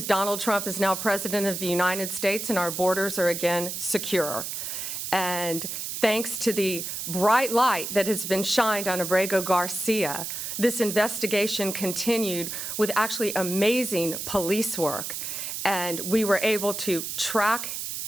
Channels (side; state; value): right; noise; hiss, 5 dB below the sound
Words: Donald Trump is now president of the United States and our borders are again secure. And thanks to the bright light that has been shined on Abrego Garcia, this investigation continued with actually amazing police work. And we were able to track